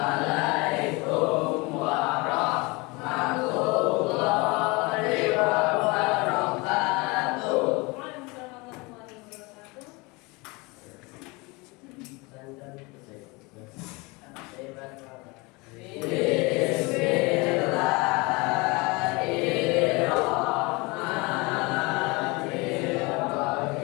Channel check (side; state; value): right; quieter; 25.9 dB